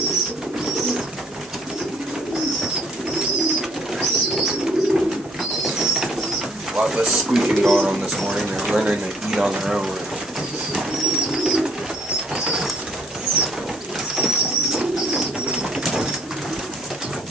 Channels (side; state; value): both; normal; correlation 0.63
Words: A lot less squeaking going on this morning. They're learning to eat on their own.